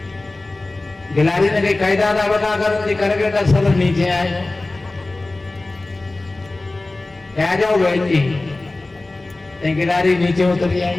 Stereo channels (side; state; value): right; quieter; 3.0 dB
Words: गिलारी ने कही कह दादा बता कर, करकेटा सरस नीचे आए, आ जाओ बैठी। गिलारी नीचे उतरी